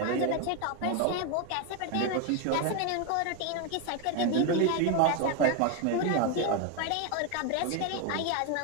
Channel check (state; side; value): different; both; correlation 0.01